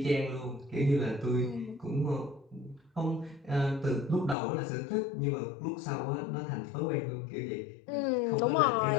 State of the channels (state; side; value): drops out; right; at 4.4 s